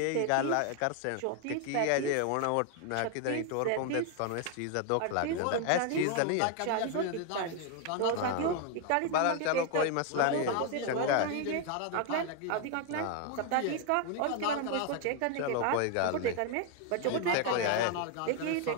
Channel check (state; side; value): different; both; correlation 0.01